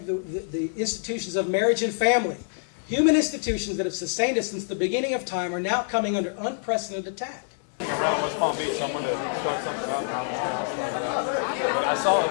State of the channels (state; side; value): silent; right; digital silence